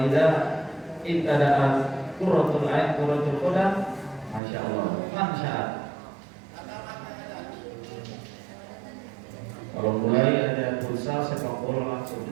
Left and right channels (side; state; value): left; drops out; at 4.4 s